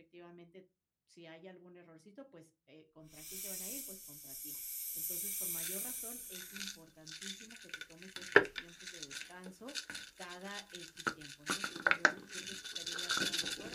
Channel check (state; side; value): identical; both; correlation 1.00